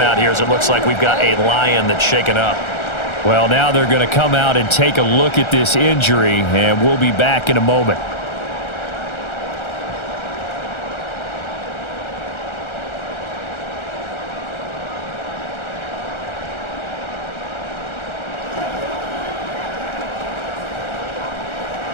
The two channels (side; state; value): right; late; 1.4 ms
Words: here as it looks like we've got a Lion that's shaken up. Well, now they're going to come out and take a look at this injury, and we'll be back in a moment.